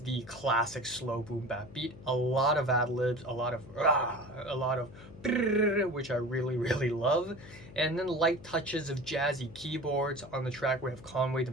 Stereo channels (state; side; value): noise; left; hum, 17 dB below the sound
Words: the classic slow boom bap beat, a lot of ad-libs, a lot of which I really love, and then light touches of jazzy keyboards. On the track we have Conway the